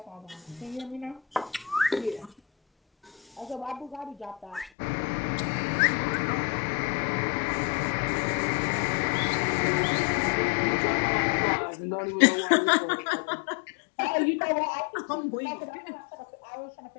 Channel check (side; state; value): right; drops out; at 4.7 s